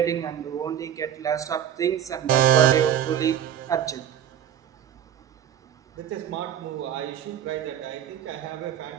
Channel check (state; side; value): quieter; left; 10.0 dB